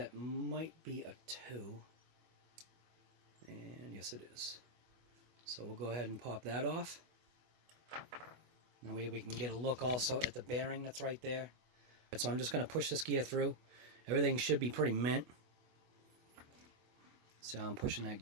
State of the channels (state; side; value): late; left; 25 ms